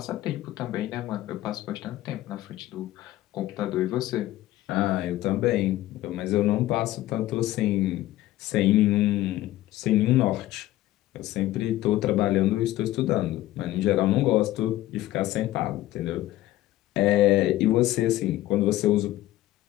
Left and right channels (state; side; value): quieter; right; 15.5 dB